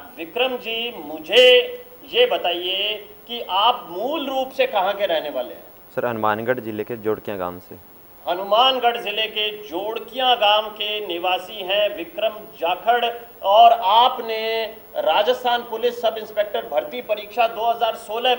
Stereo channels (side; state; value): both; identical; correlation 1.00